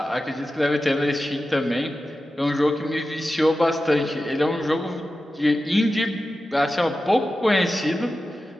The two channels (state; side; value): normal; both; correlation 0.93